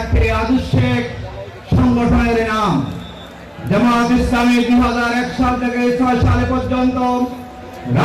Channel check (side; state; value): both; identical; correlation 1.00